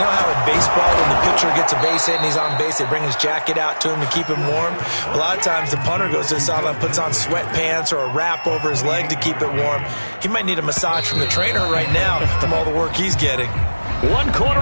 how in baseball, when the pitcher gets a base hit and he's on base, they bring his jacket out to him to keep him warm? A lot of times the punter goes to the sideline, puts on sweatpants or a wrap over his leg to keep it warm. He might need a massage from the trainer right now from all the work he's getting. 1 quarter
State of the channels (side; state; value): both; inverted; correlation -1.00